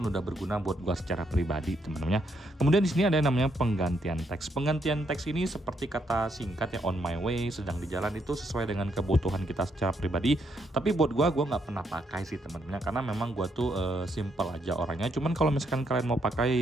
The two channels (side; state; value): both; normal; correlation 0.76